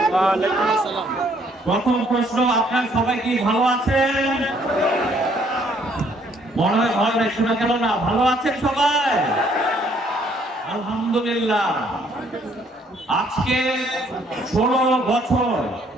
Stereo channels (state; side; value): normal; both; correlation 0.65